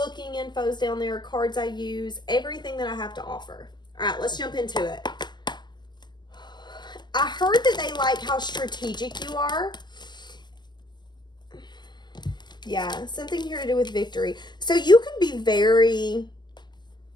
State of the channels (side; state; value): right; late; 0.21 ms